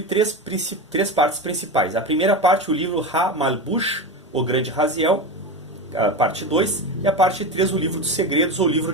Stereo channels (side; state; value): both; normal; correlation 0.22